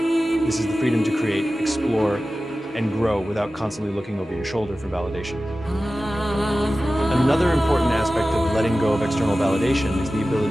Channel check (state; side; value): normal; both; correlation 0.95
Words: This is the freedom to create, explore, and grow without constantly looking over your shoulder for validation. Another important aspect of letting go of external validation is the